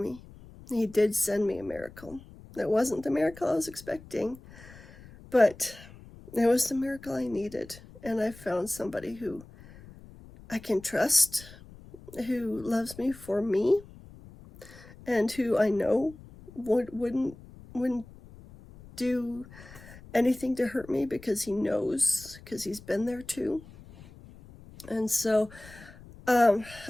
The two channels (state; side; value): noise; left; rumble, 20 dB below the sound